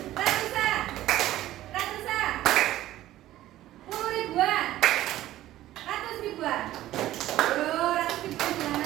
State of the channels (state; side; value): quieter; left; 14.4 dB